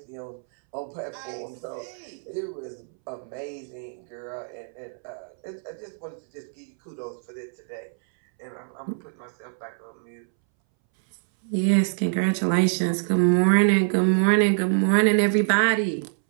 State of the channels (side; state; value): left; silent; 61 dB below the other